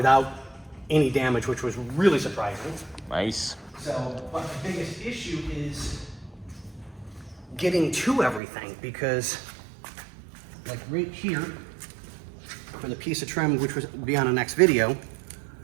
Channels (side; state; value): left; drops out; at 8.4 s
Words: any damage, which was really surprising. Nice. So, but the biggest issue is getting to everything, because like right here, for the piece of trim, which will be on the next video,